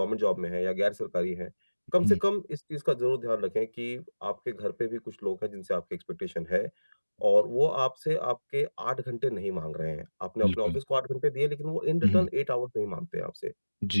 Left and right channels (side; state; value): both; inverted; correlation -1.00